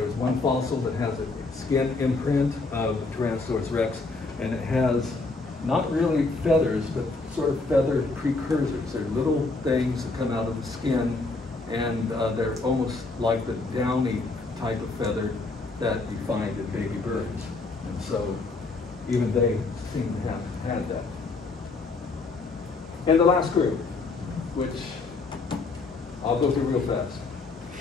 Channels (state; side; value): quieter; right; 3.6 dB